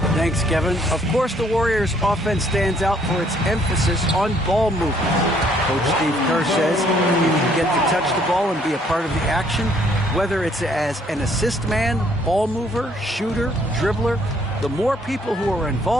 Thanks, Kevin. Of course, the Warriors' offense stands out for its emphasis on ball movement. Coach Steve Kerr says if you get to touch the ball and be a part of the action, whether it's as an assist man, ball mover, shooter, dribbler, the more people who are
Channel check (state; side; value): normal; both; correlation 0.65